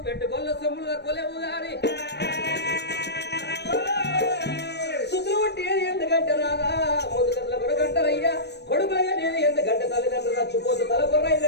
పెట్టుకోళ్ళ సొమ్ములు తక్కువలేవు గాని సుతులు వంటి ఎందుకంటే రాదా ముందు కట్ల కొడుకంటారయ్యా కొడుకులయ్యా నేను ఎందుకంటే తల్లిదండ్రులు చచ్చిపోతూ తల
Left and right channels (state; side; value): late; right; 0.49 ms